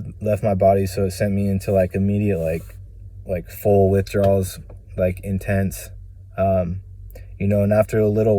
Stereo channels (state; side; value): identical; both; correlation 1.00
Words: left my body, so it sent me into like immediate like full withdrawals, like intense, you know. And after a little